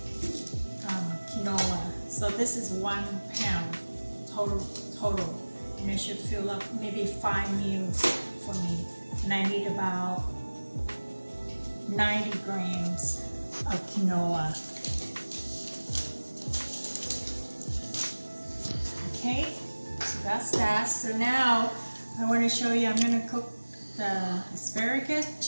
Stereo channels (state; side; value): inverted; both; correlation -1.00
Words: quinoa. So this is 1 pound total. And it should fill up maybe 5 meals for me. And I need about 90 grams of quinoa. Okay, so that's that. So now I want to show you, I'm going to cook the asparagus,